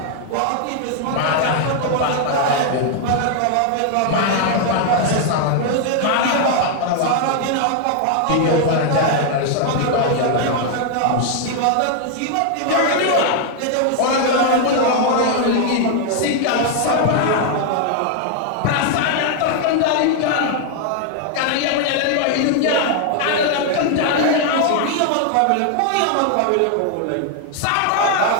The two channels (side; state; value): both; different; correlation 0.00